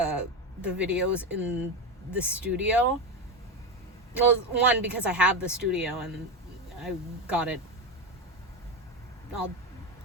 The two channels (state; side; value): normal; both; correlation 0.16